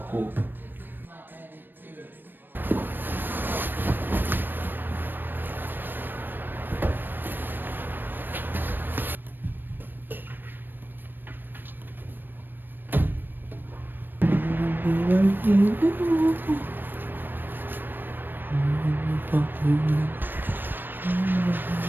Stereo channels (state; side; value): late; left; 0.094 ms